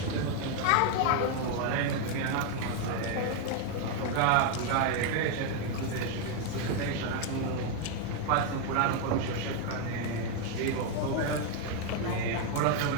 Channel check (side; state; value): both; different; correlation 0.01